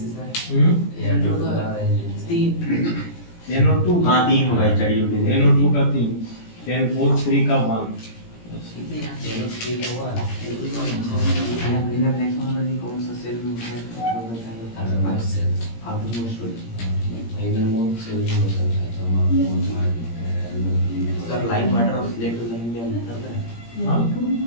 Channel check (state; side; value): late; right; 17 ms